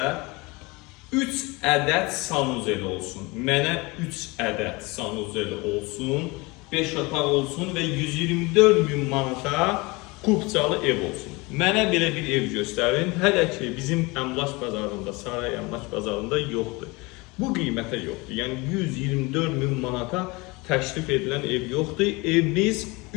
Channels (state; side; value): quieter; right; 25.0 dB